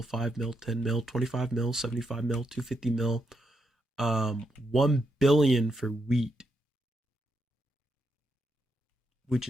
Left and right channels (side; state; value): both; normal; correlation 0.81